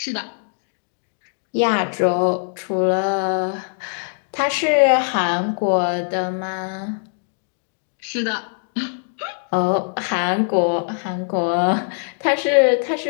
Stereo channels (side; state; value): right; silent; digital silence